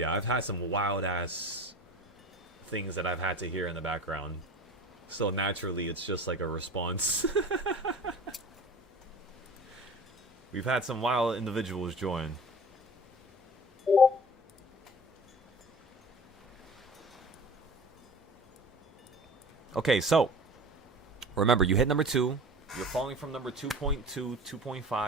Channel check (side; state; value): both; normal; correlation 0.40